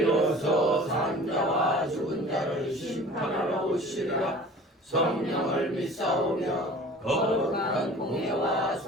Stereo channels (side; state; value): both; normal; correlation 0.44